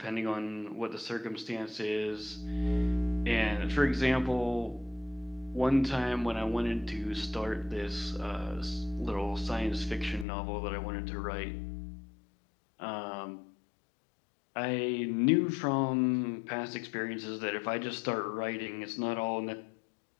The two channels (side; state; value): right; drops out; at 10.2 s